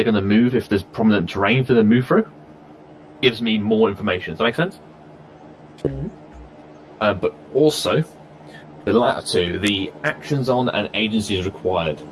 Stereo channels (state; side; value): identical; both; correlation 1.00